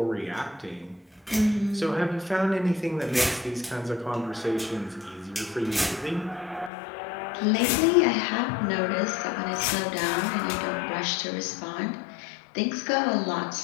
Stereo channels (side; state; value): right; drops out; at 6.7 s